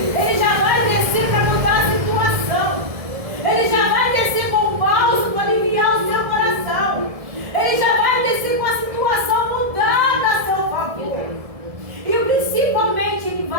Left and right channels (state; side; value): late; left; 1.7 ms